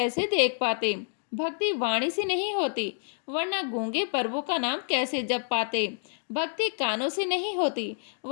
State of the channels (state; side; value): silent; right; 57 dB below the other